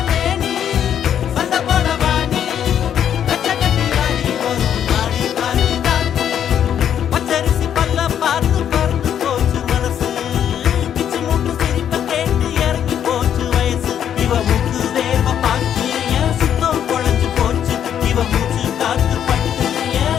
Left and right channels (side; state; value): right; quieter; 9.4 dB